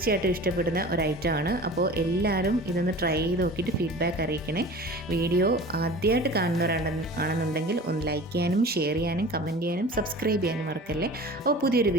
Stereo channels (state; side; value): normal; both; correlation 0.39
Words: ഇഷ്ടപ്പെടുന്ന ഒരു ഐറ്റമാണ്. അപ്പോൾ എല്ലാവരും ഇതൊന്ന് ട്രൈ ചെയ്ത് നോക്കിയിട്ട് ഫീഡ്ബാക്ക് അറിയിക്കണേ. വീഡിയോ ആദ്യമായിട്ട് കാണുന്നവരാണെന്നുണ്ടെങ്കിൽ ഒന്ന് ലൈക്ക് ചെയ്യാനും ഷെയർ ചെയ്യാനും കമൻറ്റ് ചെയ്യാനും സബ്സ്ക്രൈബ് ചെയ്യാനും മറക്കല്ലേ. അപ്പോൾ പുതിയൊരു